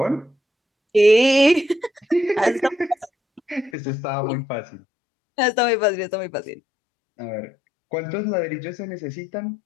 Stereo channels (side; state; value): right; drops out; at 3.7 s